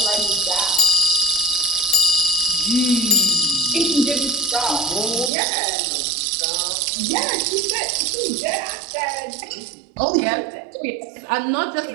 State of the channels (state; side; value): drops out; left; at 5.3 s